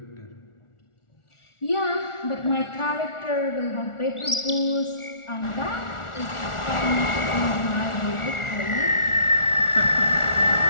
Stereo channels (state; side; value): late; right; 1.4 ms